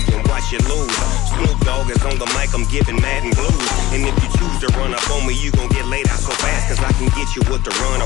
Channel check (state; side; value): quieter; right; 16.9 dB